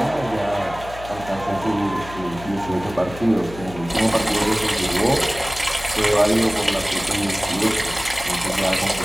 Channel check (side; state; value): left; noise; hum, 15 dB below the sound